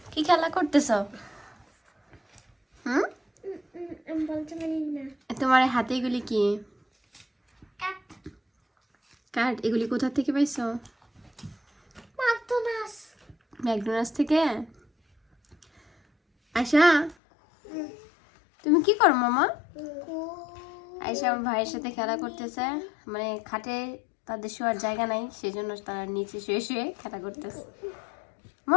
কি খেলা করতেছো? হুম, তোমার হাতে এগুলি কি? কার্ড। এগুলি কোথা থেকে পাইছো? ম্যাকডোনাল্ডস থেকে। আয়শা, তুমি কি করো মামা? আয়শা আমার ভাইয়ের সাথে খেলা করতেছে, মানে খাটে তাদের শোয়ার জায়গা নাই, সেজন্য তারা নিচে শুয়ে শুয়ে খেলা করতেছে।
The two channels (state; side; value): drops out; right; at 17.2 s